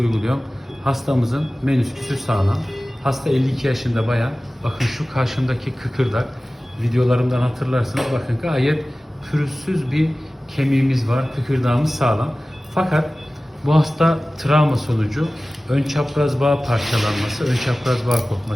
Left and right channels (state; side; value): normal; both; correlation 0.97